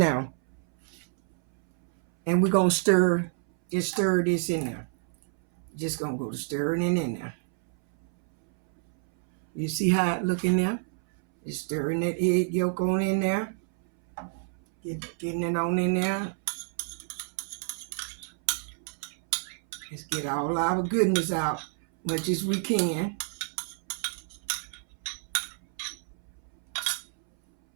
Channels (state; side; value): silent; left; 59 dB below the other